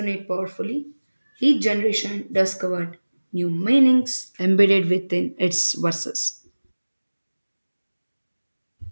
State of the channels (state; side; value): inverted; both; correlation -1.00